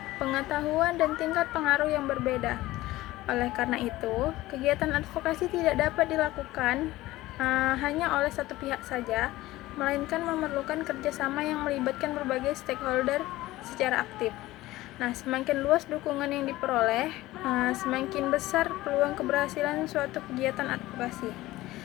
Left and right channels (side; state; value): right; quieter; 17.3 dB